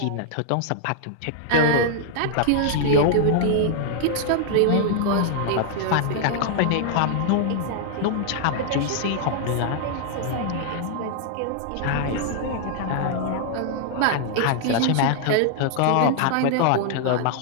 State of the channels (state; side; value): different; both; correlation 0.00